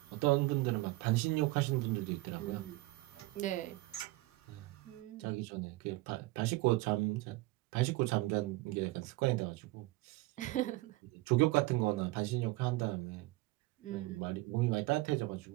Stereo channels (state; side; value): quieter; left; 20.1 dB